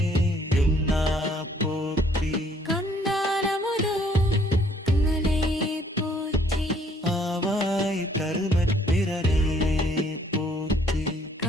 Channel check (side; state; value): both; normal; correlation 0.63